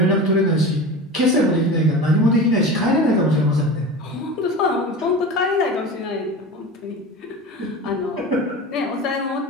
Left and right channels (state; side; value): normal; both; correlation 0.31